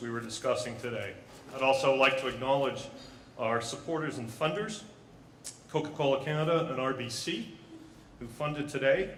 we were discussing today. I'd also like to acknowledge our supporters and funders, Coca-Cola Canada and RBC, who funded today.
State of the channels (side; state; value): both; identical; correlation 1.00